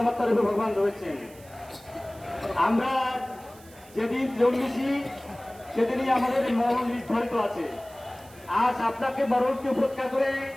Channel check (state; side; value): noise; right; hiss, 23 dB below the sound